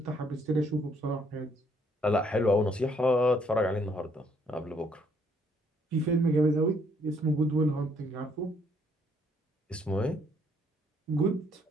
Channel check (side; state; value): both; normal; correlation 0.67